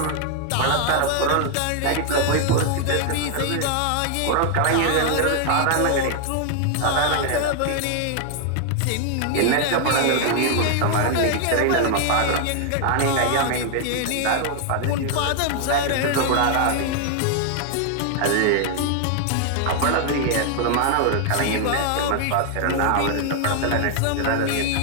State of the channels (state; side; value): different; both; correlation 0.00